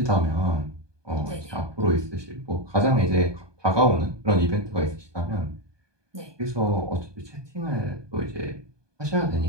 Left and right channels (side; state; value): left; late; 1.2 ms